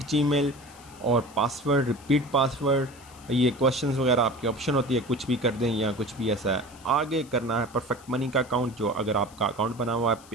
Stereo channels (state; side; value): noise; left; hiss, 23 dB below the sound